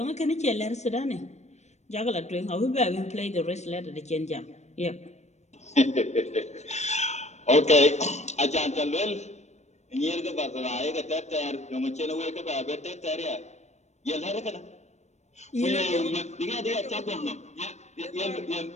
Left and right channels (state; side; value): late; right; 0.33 ms